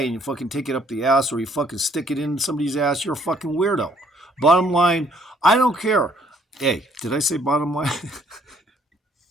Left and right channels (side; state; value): both; normal; correlation 0.64